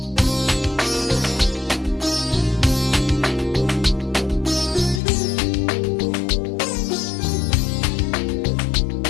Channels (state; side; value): drops out; right; at 5.0 s